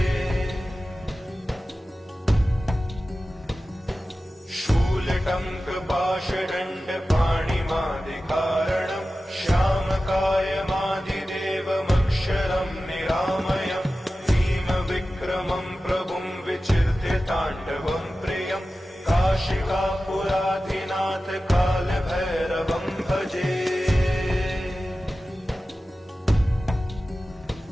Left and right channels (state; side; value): normal; both; correlation 0.95